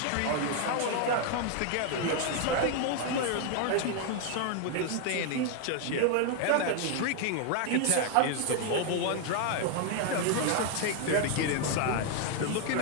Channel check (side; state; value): both; different; correlation 0.00